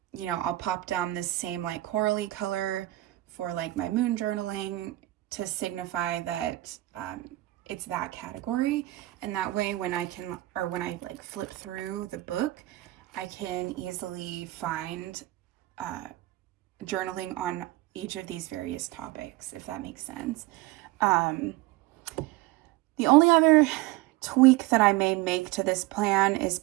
know, I'll pop down this same like corally color for like my moon journaling to signify that it's that category. And that way when I like flip through the book, I can easily find journaling on each of these various topics, if that makes sense. The only other tweak that I may make to this plan is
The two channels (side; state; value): left; quieter; 18.0 dB